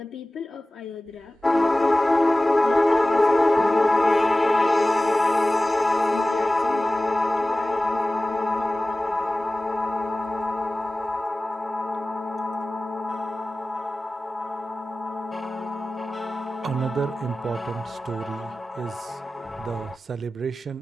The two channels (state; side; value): normal; both; correlation 0.97